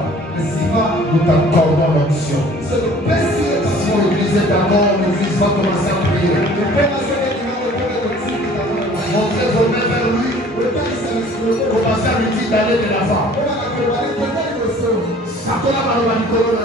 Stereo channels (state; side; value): normal; both; correlation 0.51